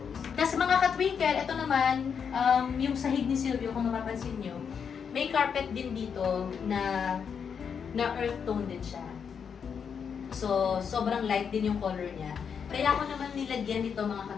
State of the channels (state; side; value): quieter; right; 6.9 dB